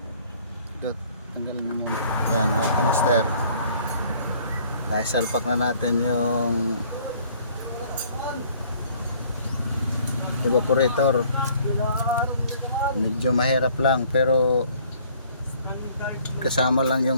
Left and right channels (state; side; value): inverted; both; correlation -0.58